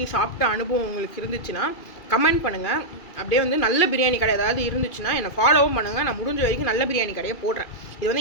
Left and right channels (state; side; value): late; right; 2.3 ms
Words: சாப்பிட்ட அனுபவம் உங்களுக்கு இருந்துச்சுன்னா கமெண்ட் பண்ணுங்கள். அப்படியே வந்து நல்ல பிரியாணி கடை ஏதாவது இருந்துச்சுன்னா என்னை ஃபாலோவும் பண்ணுங்கள். நான் முடிஞ்ச வரைக்கும் நல்ல பிரியாணி கடையை போடுறேன். இது